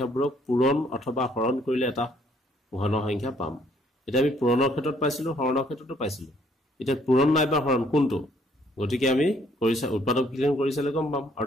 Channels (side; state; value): both; normal; correlation 0.65